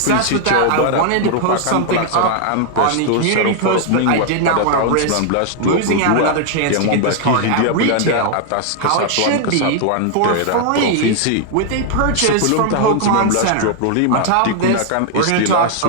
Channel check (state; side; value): different; both; correlation 0.00